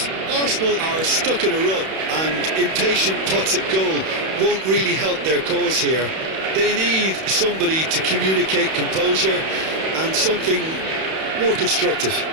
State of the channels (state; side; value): late; left; 31 ms